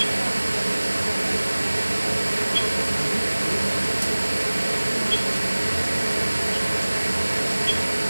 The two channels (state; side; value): inverted; both; correlation -1.00